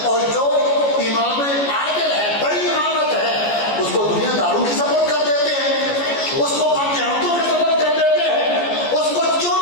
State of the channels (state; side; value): late; right; 14 ms